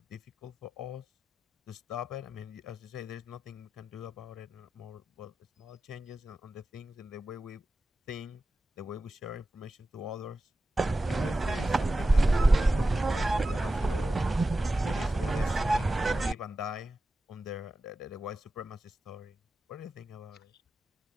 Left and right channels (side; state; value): both; normal; correlation 0.93